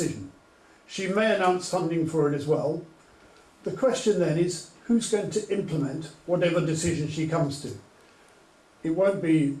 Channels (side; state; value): both; identical; correlation 1.00